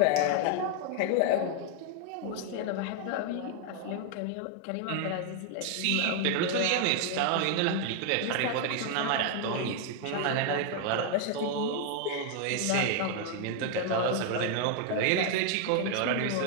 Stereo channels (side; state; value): both; different; correlation 0.00